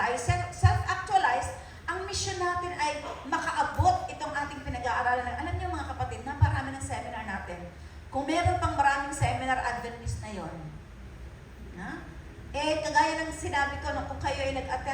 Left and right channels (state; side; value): identical; both; correlation 1.00